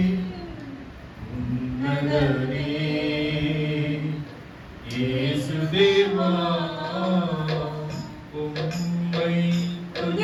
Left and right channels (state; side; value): identical; both; correlation 1.00